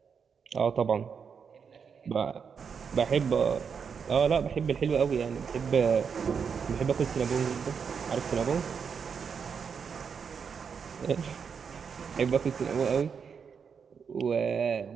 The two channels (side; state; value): left; quieter; 6.4 dB